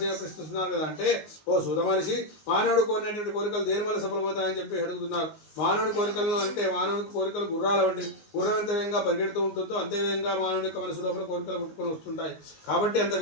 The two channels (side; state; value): right; late; 19 ms